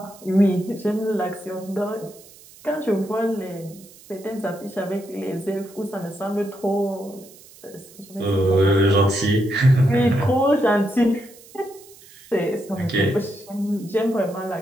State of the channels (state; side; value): noise; right; hiss, 22 dB below the sound